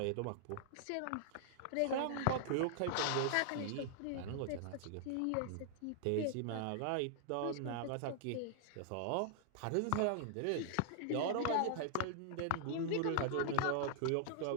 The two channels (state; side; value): different; both; correlation -0.01